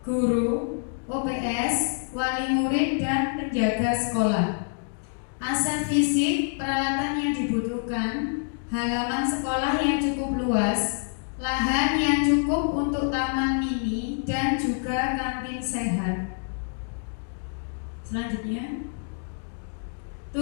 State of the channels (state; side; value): silent; right; 60 dB below the other